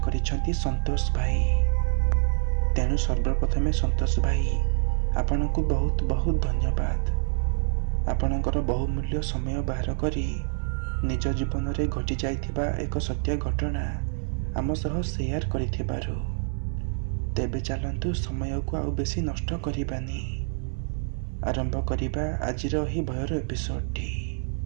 करिसेंती संतोष भाई। तेणु सर्वप्रथमे संतोष भाई आपण को बहुत बहुत धन्यवाद। आपणकर बहुमूल्य समय बाहर करी निज जीवन में घटी जाइथिबा एक सत्य घटना आम सह शेयर करिथिबारु। तेबे चलंतु समय को आउ बेसी नष्ट करिबानी, आरंभ करिबा आजिर ही भयर एपिसोडटी।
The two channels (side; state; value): left; silent; 58 dB below the other